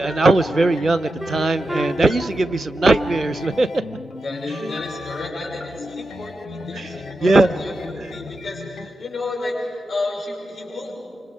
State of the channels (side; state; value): both; normal; correlation 0.89